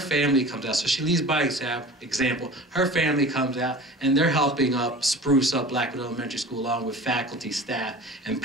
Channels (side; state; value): both; normal; correlation 0.39